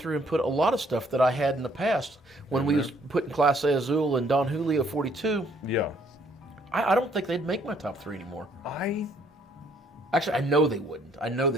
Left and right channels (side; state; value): both; normal; correlation 0.65